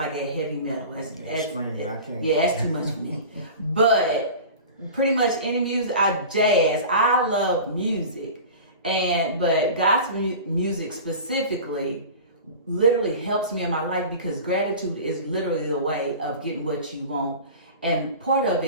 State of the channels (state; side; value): inverted; both; correlation -0.35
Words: heavy metal. That's too much for me. But pretty much any music, jazz. I love music, but gospel music specifically literally helps me in my life, because gratitude is literally the way of getting what you want, and part of